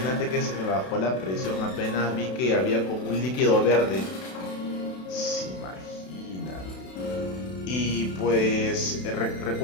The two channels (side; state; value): right; late; 32 ms